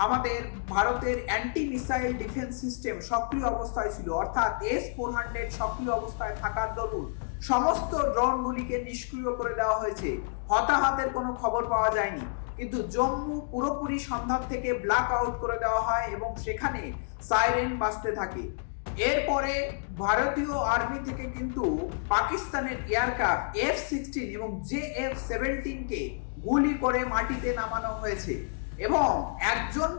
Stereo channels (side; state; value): right; silent; digital silence